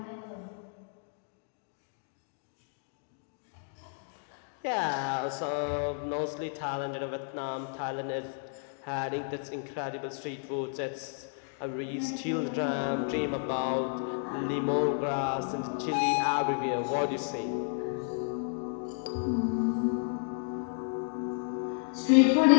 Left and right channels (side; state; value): right; silent; 57 dB below the other